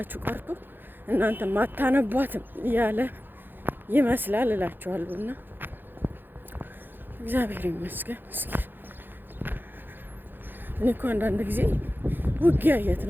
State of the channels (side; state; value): left; late; 0.095 ms